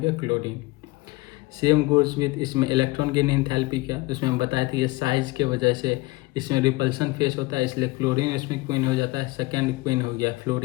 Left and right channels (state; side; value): quieter; right; 22.1 dB